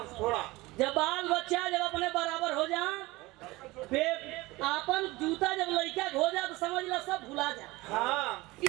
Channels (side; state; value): left; quieter; 21.0 dB